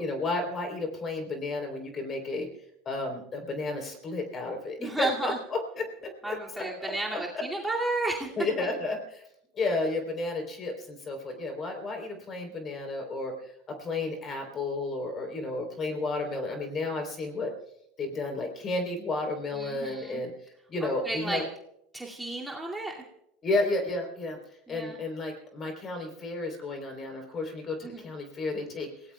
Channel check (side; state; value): both; normal; correlation 0.57